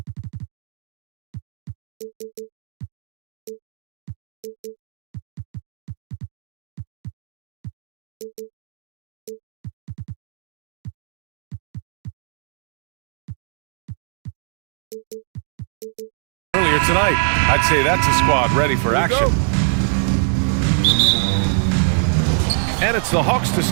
Earlier tonight, I'd say that's a squad ready for action. And it's the Hawks to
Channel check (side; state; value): left; silent; digital silence